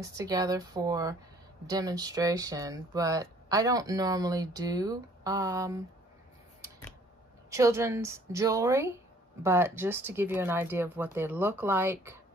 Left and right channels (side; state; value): both; normal; correlation 0.58